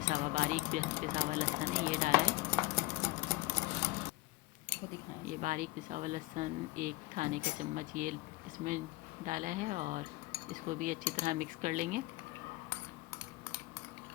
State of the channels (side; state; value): right; quieter; 21.0 dB